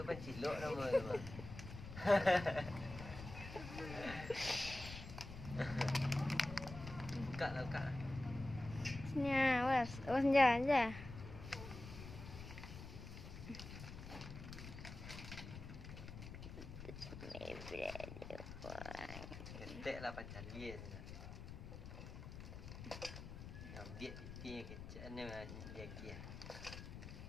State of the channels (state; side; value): noise; left; rumble, 10 dB below the sound